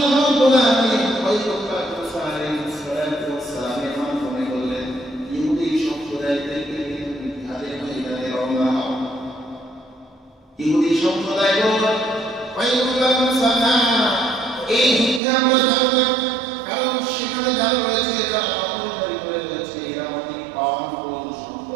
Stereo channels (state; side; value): drops out; left; at 15.2 s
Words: রাব্বুল আলামিন পয়গম্বর মুসা আলাইহিস সালাতু ওয়াস সালামের মাধ্যমে বললেন, ইহুদি সম্প্রদায়কে জিহাদের ময়দানে রওনা হও। ইহুদি সম্প্রদায় বলল, পয়গম্বর মুসা এই যুদ্ধে আমরা যাব না, কারণ সেখানে যারা রয়েছে যারা দখলদারি করে রয়েছে এরা অনেক পাওয়ারফুল